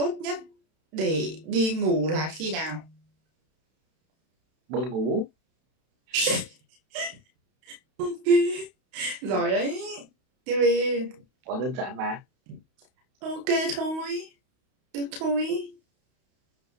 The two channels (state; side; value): late; left; 31 ms